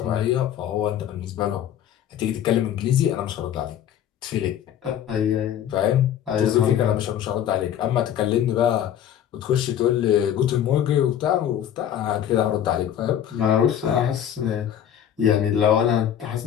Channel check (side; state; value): right; quieter; 10.2 dB